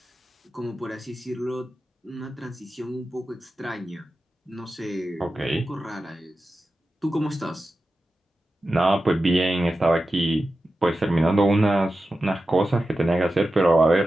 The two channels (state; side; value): normal; both; correlation 0.92